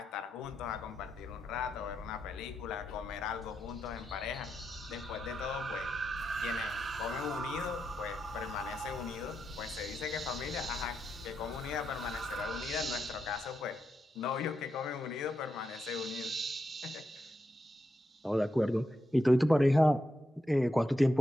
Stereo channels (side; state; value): both; normal; correlation 0.85